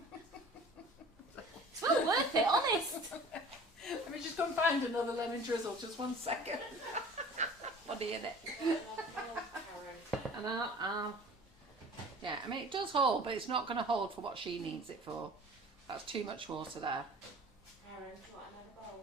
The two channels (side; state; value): both; normal; correlation 0.45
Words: It's well worth it, honest. Let me just go and find another lemon drizzle. Just 1 second. Funny, innit? And yeah, I mean it does hold, but it's not going to hold for what she needs it for. That's too much water there. Aaron, do you want another bowl?